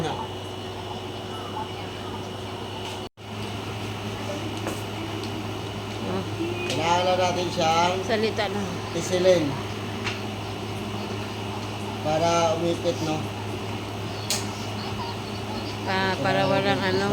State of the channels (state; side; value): identical; both; correlation 1.00